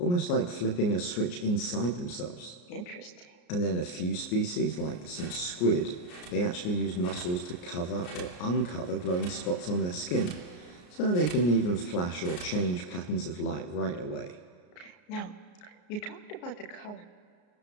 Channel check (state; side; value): late; right; 34 ms